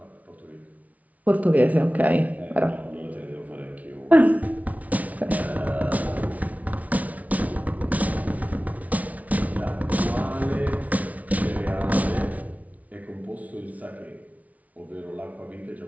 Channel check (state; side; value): late; left; 0.070 ms